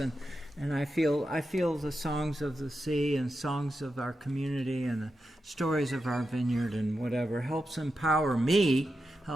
I feel the songs of the sea and songs of our community and the stories of our vineyard and whatever helps empower me,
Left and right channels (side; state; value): both; normal; correlation 0.88